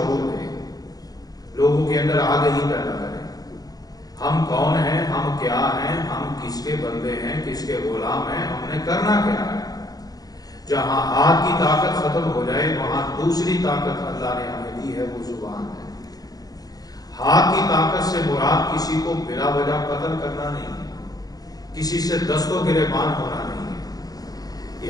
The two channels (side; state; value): right; late; 0.18 ms